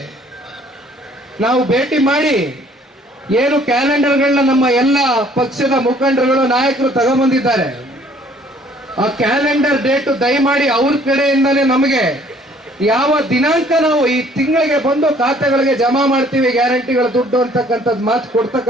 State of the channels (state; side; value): normal; both; correlation 0.58